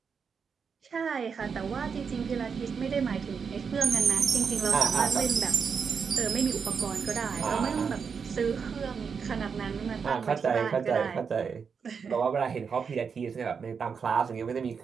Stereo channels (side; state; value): left; quieter; 6.1 dB